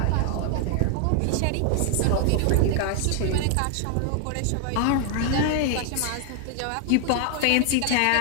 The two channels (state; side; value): different; both; correlation 0.00